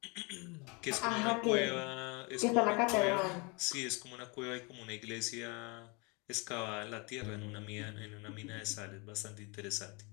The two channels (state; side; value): quieter; right; 30.0 dB